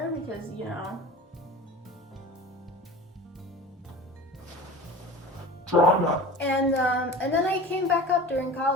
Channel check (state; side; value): normal; both; correlation 0.36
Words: because, you know, Drama. And then I came back up during